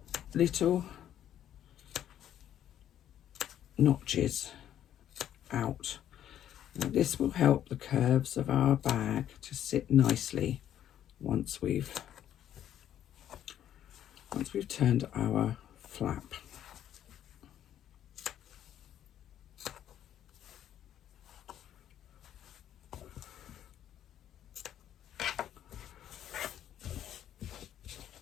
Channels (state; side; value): quieter; right; 10.8 dB